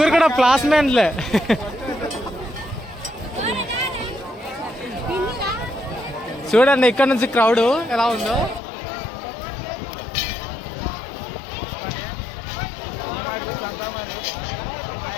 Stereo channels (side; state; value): right; drops out; at 8.6 s